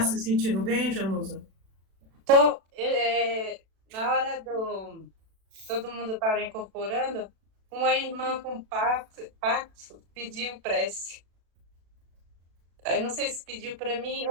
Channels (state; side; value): late; left; 36 ms